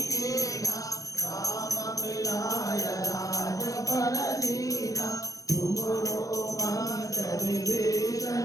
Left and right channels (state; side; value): late; right; 0.17 ms